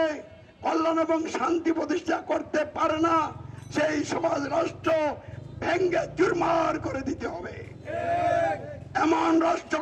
কল্যাণ এবং শান্তি প্রতিষ্ঠা করতে পারে না, সেই সমাজ রাষ্ট্র ভেঙ্গে চুরমার করে দিতে হবে। এমন রাষ্ট্র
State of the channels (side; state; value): both; identical; correlation 1.00